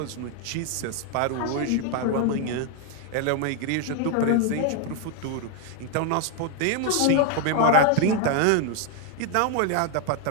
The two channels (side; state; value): both; different; correlation 0.00